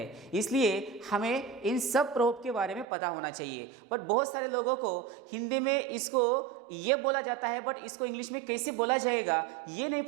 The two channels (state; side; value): drops out; left; at 2.9 s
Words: इसलिए हमें इन सब प्रोवर्ब के बारे में पता होना चाहिए। बट बहुत सारे लोगों को हिंदी में इसको ये बोला जाता है बट इसको इंग्लिश में कैसे बोला जाएगा ये नहीं